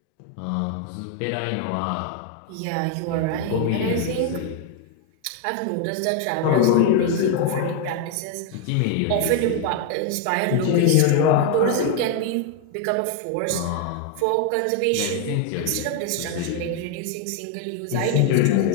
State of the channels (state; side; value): different; both; correlation 0.01